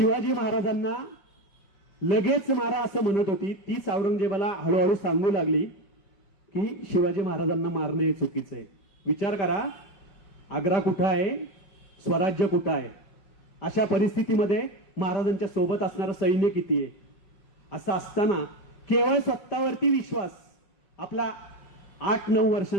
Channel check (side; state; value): right; late; 5.1 ms